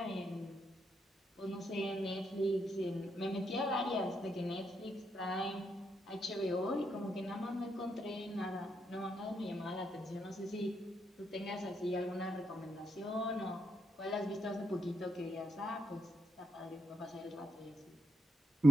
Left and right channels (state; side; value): normal; both; correlation 0.81